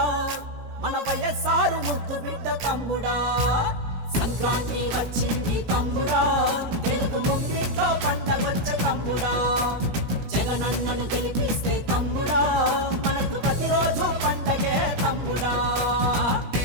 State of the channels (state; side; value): late; left; 17 ms